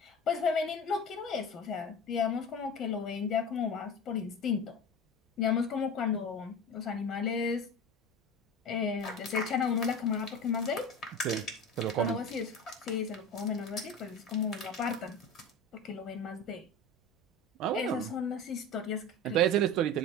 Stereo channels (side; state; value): both; normal; correlation 0.31